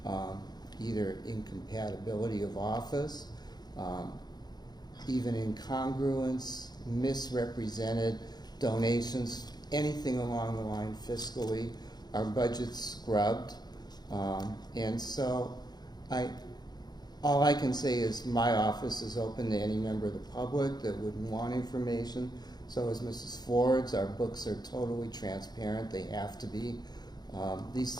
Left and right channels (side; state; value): right; late; 0.20 ms